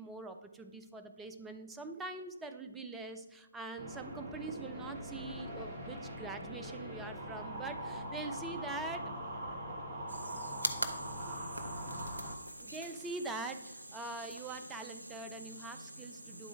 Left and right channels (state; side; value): inverted; both; correlation -0.37